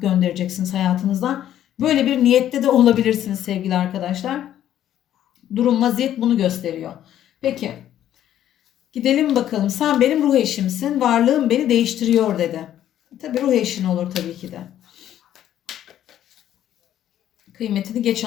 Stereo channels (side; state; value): right; quieter; 11.4 dB